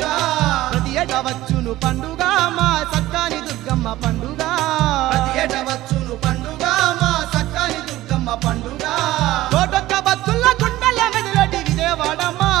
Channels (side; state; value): left; quieter; 16.2 dB